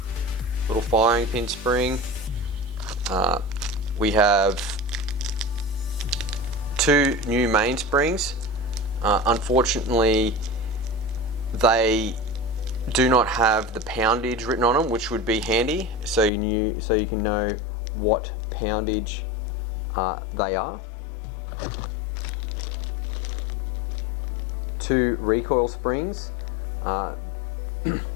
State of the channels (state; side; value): drops out; right; at 16.3 s